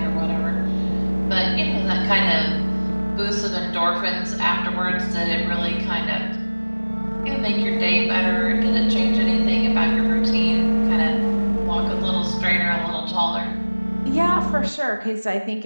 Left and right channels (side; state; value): both; inverted; correlation -1.00